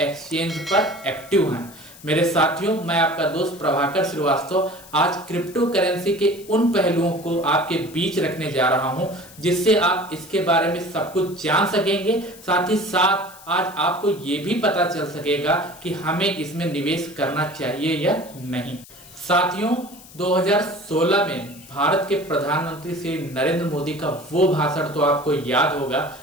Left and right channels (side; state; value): left; noise; hiss, 20 dB below the sound